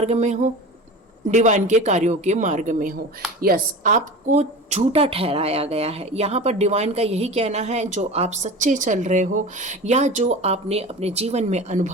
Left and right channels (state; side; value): normal; both; correlation 0.33